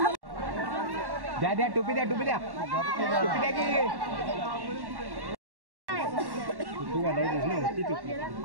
द्या द्या टोपी द्या, टोपी द्या, टोपी द्या की टोपी घालायची ना, होती टोपी.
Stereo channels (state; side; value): late; left; 1.1 ms